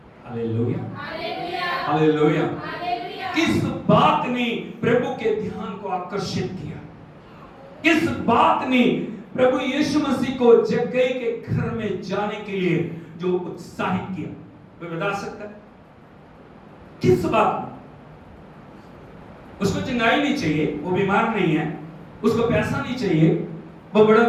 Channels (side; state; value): both; identical; correlation 1.00